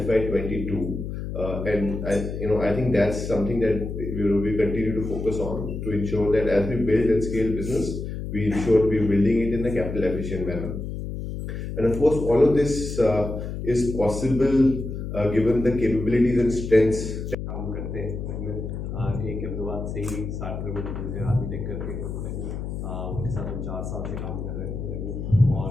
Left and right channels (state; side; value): noise; left; hum, 6 dB below the sound